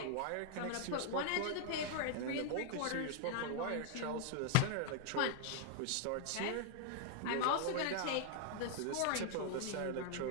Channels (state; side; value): different; both; correlation -0.01